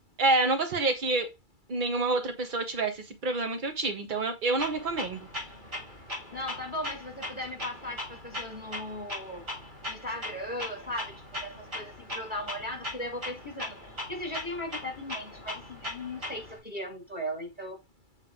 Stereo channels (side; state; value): left; late; 2.3 ms